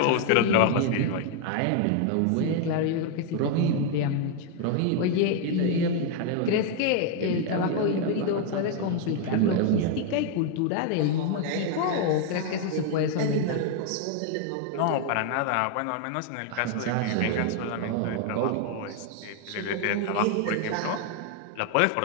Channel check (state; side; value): different; both; correlation 0.01